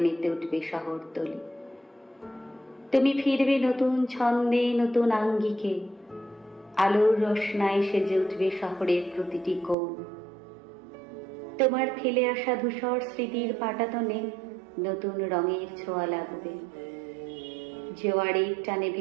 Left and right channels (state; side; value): drops out; left; at 9.8 s